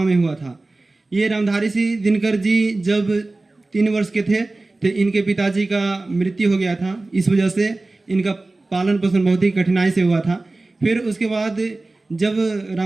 में हुआ था। ये रामधारी सिंह दिनकर जी जब 3 वर्ष के थे तो इनके पिताजी का मृत्यु हो गया था। इस वजह से इनका पालन पोषण बहुत ही कठिनाई से हुआ था। फिर उसके बाद जब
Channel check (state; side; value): quieter; left; 3.1 dB